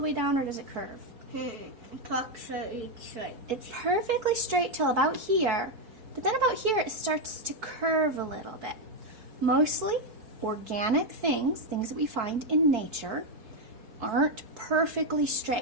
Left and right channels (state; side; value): late; left; 4.5 ms